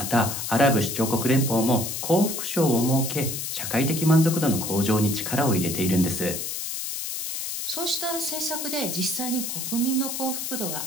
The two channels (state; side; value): noise; left; hiss, 4 dB below the sound